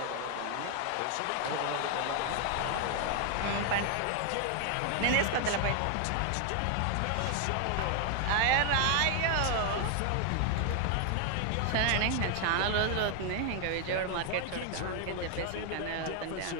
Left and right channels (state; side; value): different; both; correlation 0.00